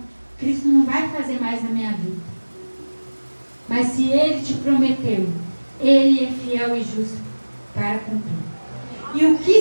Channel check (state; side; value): inverted; both; correlation -1.00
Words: Cristo não vai fazer mais na minha vida. Mas se Ele te prometeu, Ele é fiel e justo para cumprir. E o